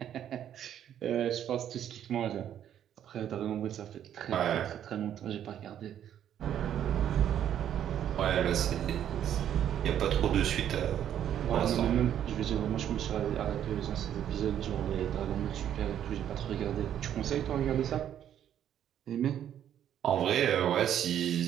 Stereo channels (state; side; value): quieter; left; 10.2 dB